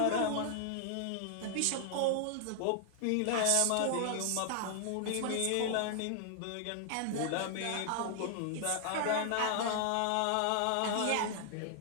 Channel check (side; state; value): both; different; correlation 0.00